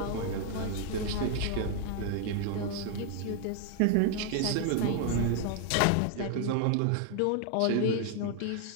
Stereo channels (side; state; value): both; different; correlation 0.00